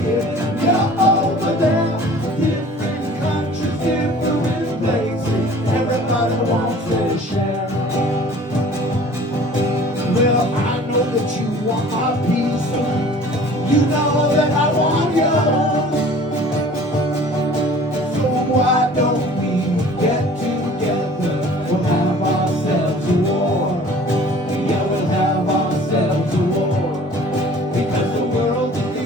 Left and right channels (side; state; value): both; normal; correlation 0.48